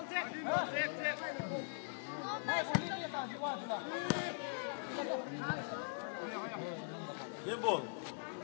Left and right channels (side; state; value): right; silent; digital silence